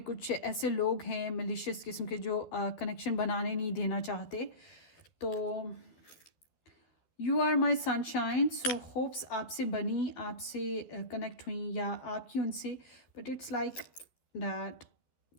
कुछ ऐसे लोग हैं मिलिशियस किस्म के जो कनेक्शन बनाने नहीं देना चाहते। तो you are my sunshine, so hopes आपसे बनी, आपसे कनेक्ट हुई या आपकी उनसे। But it's like that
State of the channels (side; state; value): right; late; 12 ms